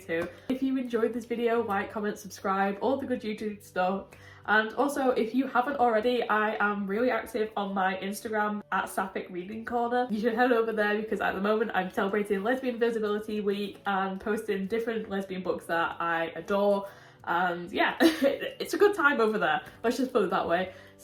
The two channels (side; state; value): both; identical; correlation 1.00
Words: If you enjoyed this video, like, comment, subscribe, all the good YouTube stuff, And also, if you haven't already, I am really active on my Instagram at Sapphic Reading Corner. You should head over there because at the moment I'm celebrating Lesbian Visibility Week and posting different lesbian books that I adore. And yeah, it's a good time over there. Let's just put it that way.